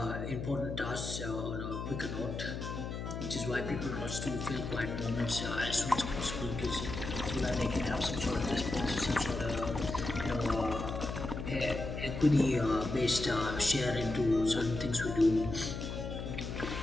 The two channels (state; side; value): noise; left; hum, 5 dB below the sound